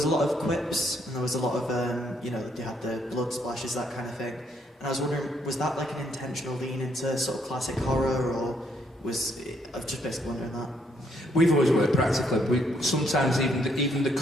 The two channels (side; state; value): both; normal; correlation 0.71